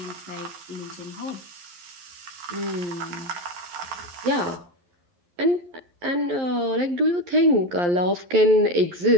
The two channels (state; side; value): late; left; 11 ms